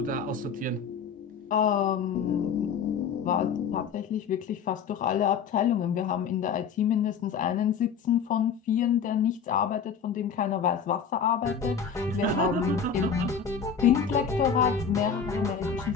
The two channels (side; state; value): right; quieter; 6.7 dB